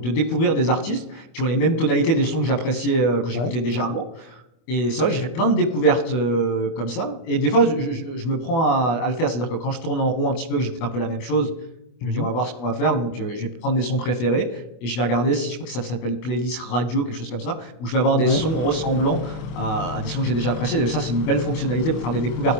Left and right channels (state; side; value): late; right; 25 ms